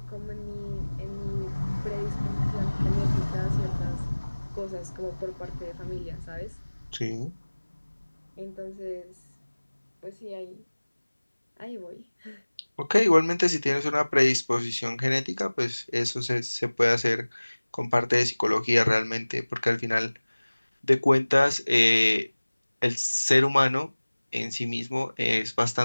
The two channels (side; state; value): both; inverted; correlation -1.00